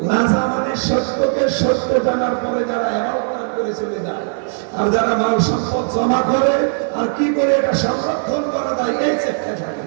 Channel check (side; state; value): left; silent; 56 dB below the other